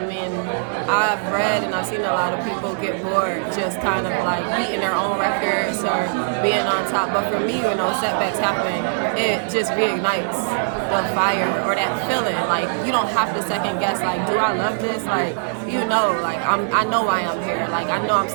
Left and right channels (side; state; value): left; silent; 63 dB below the other